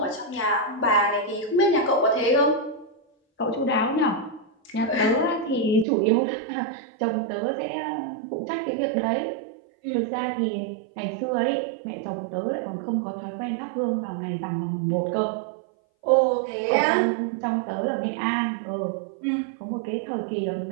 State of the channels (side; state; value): left; drops out; at 5.9 s